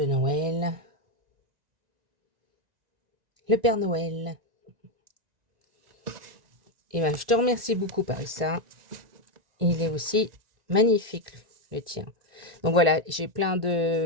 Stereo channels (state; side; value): late; left; 1.9 ms